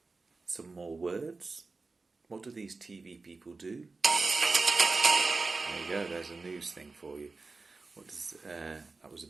Some more words. What do these TV people do? There you go, there's a news thing for you. That was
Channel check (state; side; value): quieter; left; 3.9 dB